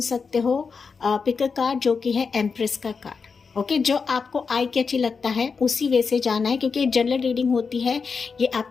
सकते हो पिक कार्ड, जो कि है एम्प्रेस का कार्ड। ओके, जो आपको आई कैची लगता है उसी वे से जाना है, क्योंकि जनरल रीडिंग होती है, ये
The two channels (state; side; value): quieter; right; 5.2 dB